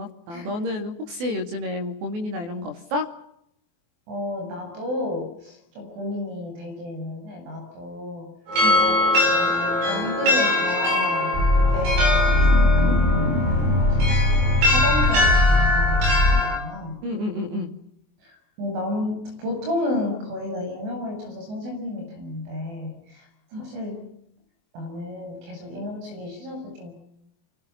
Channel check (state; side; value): late; left; 24 ms